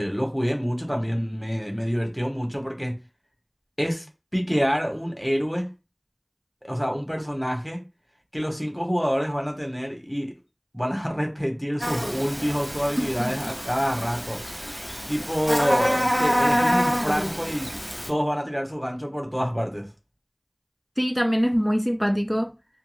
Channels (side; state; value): both; identical; correlation 1.00